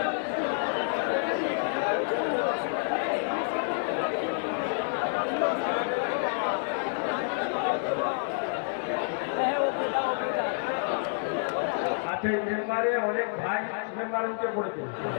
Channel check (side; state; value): right; silent; digital silence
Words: মেম্বারে অনেক ভাই মেম্বার উঠে পড়েছে।